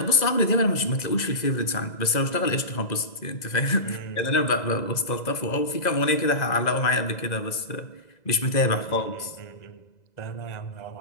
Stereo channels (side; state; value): right; late; 2.0 ms